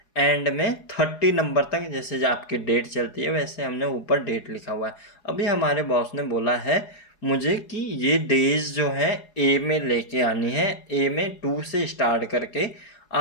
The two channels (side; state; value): right; late; 4.8 ms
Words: एंड में 30 नंबर तक जैसे जो आपकी डेट चलती है वैसे हमने ऊपर डेट लिखा हुआ है। अभी हमारे बॉस ने बोला है मुझे कि ये डेज जो है ए में लेके आनी है। ए में 2 से स्टार्ट करके